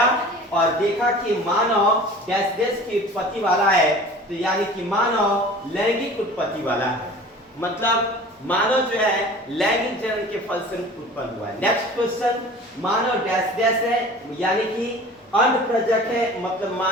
और देखा कि मानव डैश डैश की उत्पत्ति वाला है, तो यानी कि मानव लैंगिक उत्पत्ति वाला है, मतलब मानव जो है लैंगिक जनन के फलस्वरूप उत्पन्न हुआ है। नेक्स्ट क्वेश्चन, मानव डैश डैश है, यानी कि अंड प्रजक है, मतलब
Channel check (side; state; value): both; normal; correlation 0.42